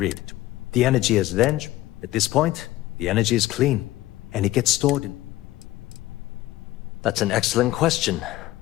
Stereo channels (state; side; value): quieter; right; 16.5 dB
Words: The energy is then... At this point, the energy is clean, and it gets stored in... That's an excellent question,